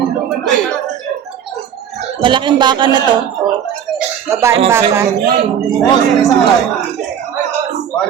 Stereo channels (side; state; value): left; quieter; 8.9 dB